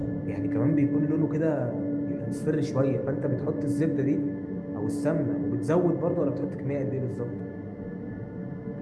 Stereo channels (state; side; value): identical; both; correlation 1.00